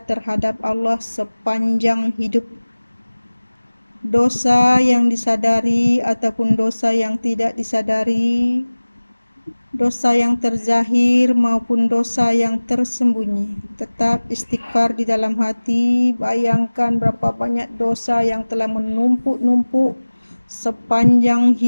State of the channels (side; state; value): both; inverted; correlation -1.00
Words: terhadap Allah sepanjang hidup. Dosa yang disadari ataupun dosa yang tidak disadari. dosa yang terzahir maupun dosa yang tersembunyi. Tetap istighfar di dalam hati. Bayangkan berapa banyak dosa yang telah menumpuk-numpuk sepanjang